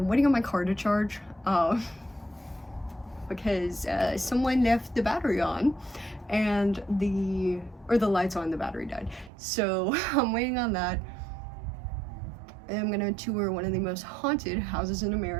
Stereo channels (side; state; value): left; drops out; at 9.3 s